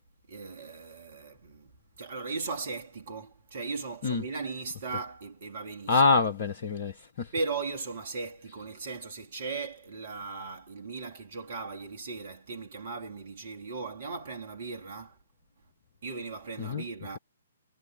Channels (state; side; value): inverted; both; correlation -0.59